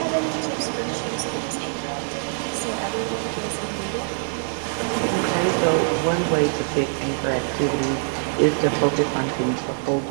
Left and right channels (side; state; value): left; silent; 63 dB below the other